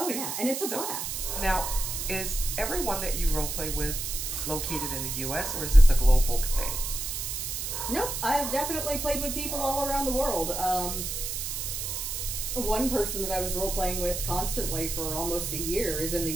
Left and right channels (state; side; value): noise; right; hiss, 3 dB below the sound